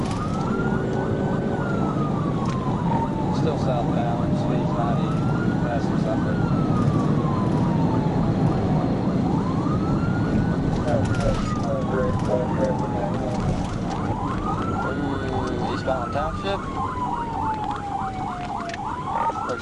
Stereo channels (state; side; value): identical; both; correlation 1.00